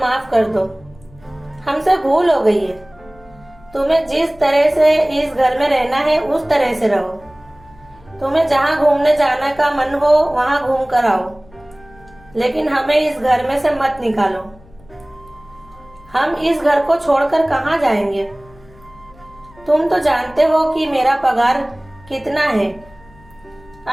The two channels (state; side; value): noise; left; hum, 25 dB below the sound